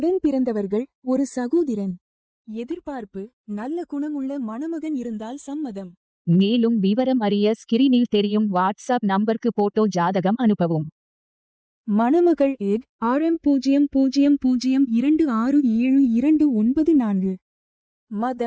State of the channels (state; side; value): identical; both; correlation 1.00